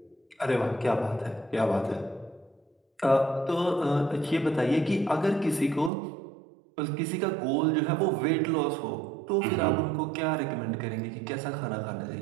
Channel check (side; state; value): left; drops out; at 5.9 s